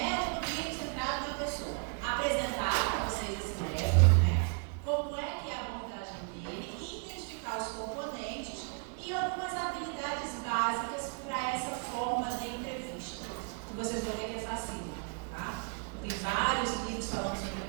clínico centrado na pessoa? Apresentar para vocês esse método, né? Como é que é a abordagem dele, identificar os componentes e algumas habilidades básicas para essa forma de entrevista. Que vocês vão ver que é fácil, tá? Tem vários livros falando sobre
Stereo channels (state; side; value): quieter; left; 39.9 dB